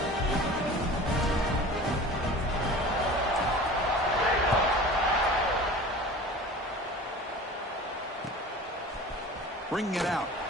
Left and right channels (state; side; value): normal; both; correlation 0.39